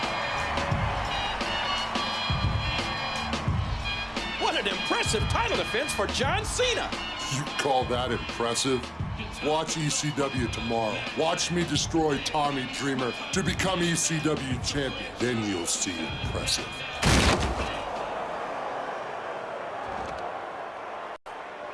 What an impressive title defense for John Cena. You call that impressive? Watch ECW tomorrow. Watch me destroy Tommy Dreamer to become ECW champion. Then you'll see impressive.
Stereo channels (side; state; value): both; identical; correlation 1.00